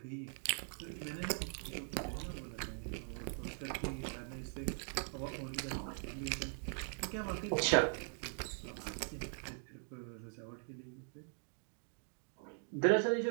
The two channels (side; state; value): left; silent; 50 dB below the other